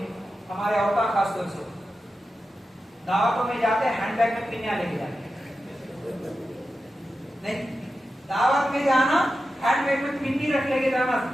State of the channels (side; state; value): both; normal; correlation 0.91